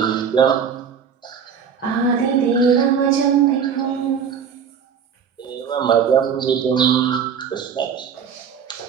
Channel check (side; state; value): left; quieter; 7.1 dB